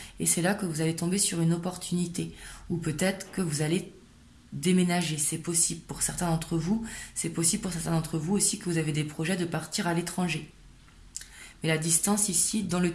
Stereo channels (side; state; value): both; identical; correlation 1.00